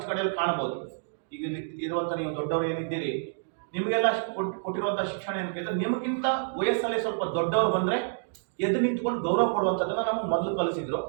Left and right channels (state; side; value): silent; left; digital silence